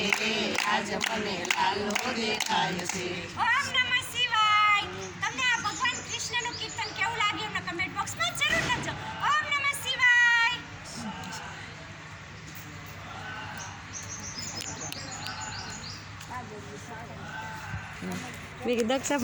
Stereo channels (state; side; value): identical; both; correlation 1.00